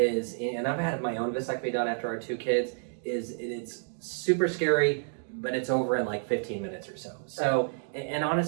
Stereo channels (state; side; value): silent; left; digital silence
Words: and I've had my own vasectomy done after our 2 kids, is it's super scary, but it's over in like 15 minutes or so. So, and